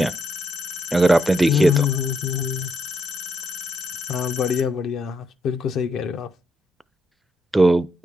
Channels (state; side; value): normal; both; correlation 0.78